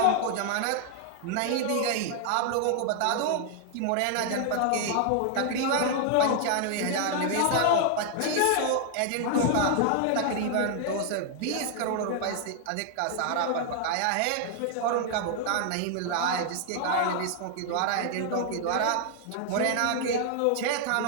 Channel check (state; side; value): different; both; correlation 0.00